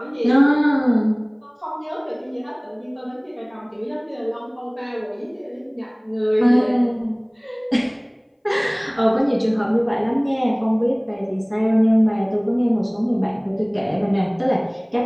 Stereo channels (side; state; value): both; identical; correlation 1.00